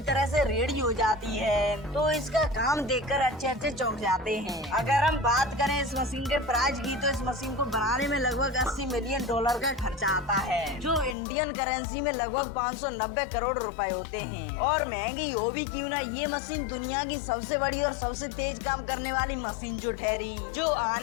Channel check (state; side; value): drops out; right; at 11.2 s